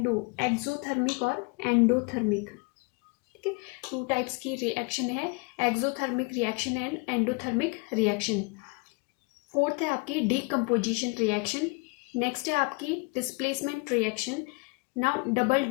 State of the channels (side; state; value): right; quieter; 30.0 dB